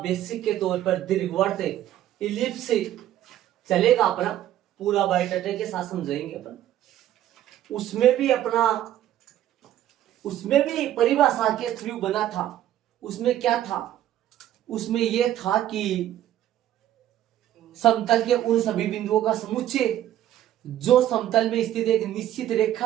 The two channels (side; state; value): left; quieter; 12.4 dB